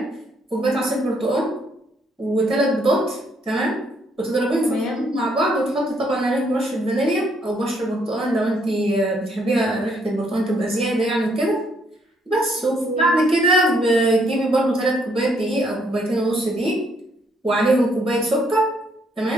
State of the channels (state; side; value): normal; both; correlation 0.70